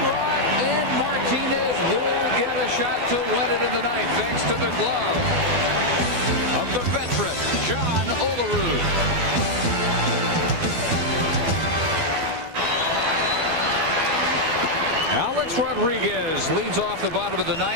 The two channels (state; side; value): late; left; 12 ms